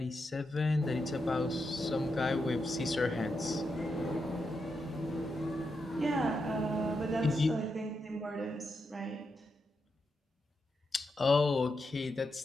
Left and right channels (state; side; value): normal; both; correlation 0.85